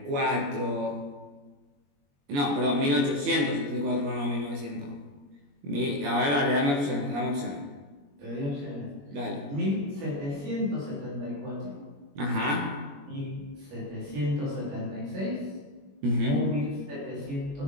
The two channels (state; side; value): late; left; 21 ms